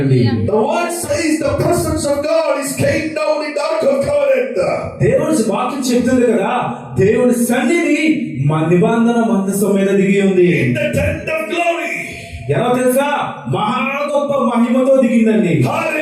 The word says the presence of God is came down in the Ark of Covenant. దేవుడి వాక్యం చెప్తుంది కదా, దేవుడి సన్నిధి మా నిబంధన మందసం మీద దిగి ఉంది. In the tent of glory. ఎలా తెలుసా? మహా గొప్ప మహిమతో దిగిందండి.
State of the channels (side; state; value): both; identical; correlation 1.00